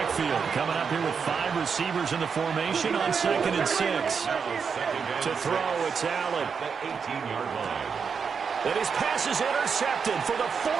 Coming up here with 5 receivers in the formation on 2nd and 6. To throw, it's Allen. The 18-yard line. And his pass is intercepted for the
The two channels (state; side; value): quieter; left; 6.1 dB